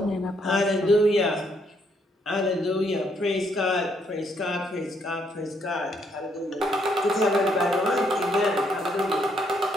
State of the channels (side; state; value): both; normal; correlation 0.72